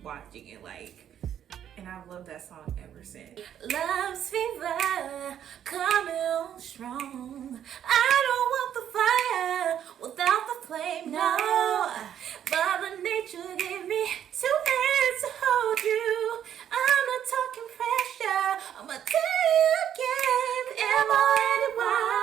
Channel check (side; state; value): left; quieter; 9.9 dB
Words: watching it, like, and I've loved that song ever since. Love's fever coming on strong. I don't want the fire without the flame, no. Mother Nature gave me 2 hands to hold you. I'm not talking pressure. I'ma tell you again,